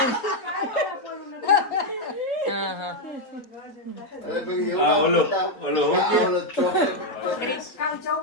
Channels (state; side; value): late; right; 3.8 ms